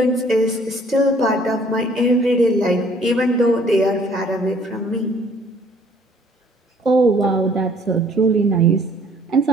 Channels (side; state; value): both; normal; correlation 0.58